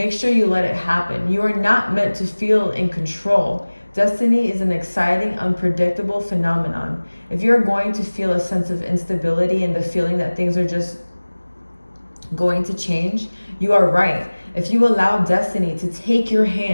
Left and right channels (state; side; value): inverted; both; correlation -1.00